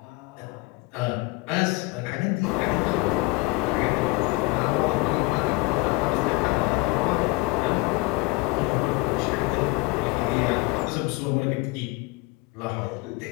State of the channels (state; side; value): quieter; right; 23.7 dB